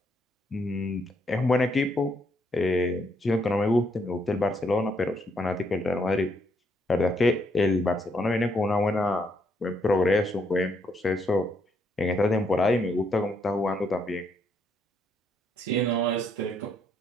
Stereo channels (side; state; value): both; normal; correlation 0.73